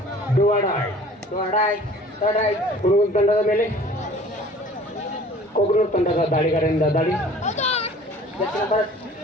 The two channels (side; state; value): both; normal; correlation 0.49